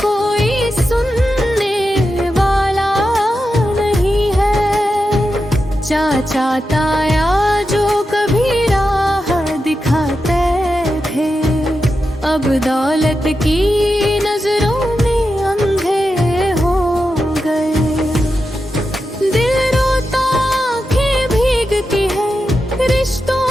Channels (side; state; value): both; normal; correlation 0.89